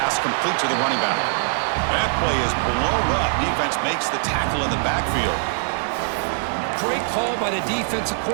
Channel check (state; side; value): silent; left; digital silence